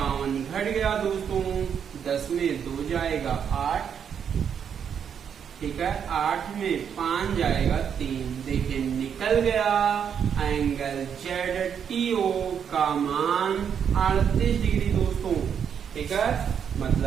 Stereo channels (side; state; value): left; quieter; 7.8 dB